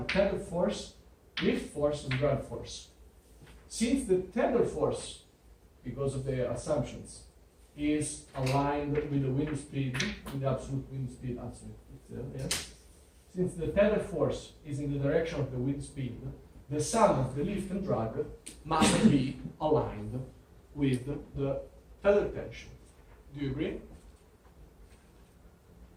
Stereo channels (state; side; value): identical; both; correlation 1.00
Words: tether force, lift force, and drag force. Since the tether force, because of the assumptions, is aligned with the wind speed, with the absolute wind speed, yes. Since the tether force is in the direction of the wind speed, the sum of the lift and drag must be aligned with the tether tension. Do you agree?